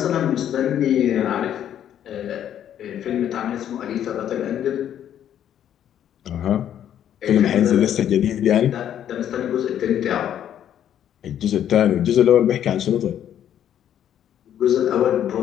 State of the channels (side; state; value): right; quieter; 10.3 dB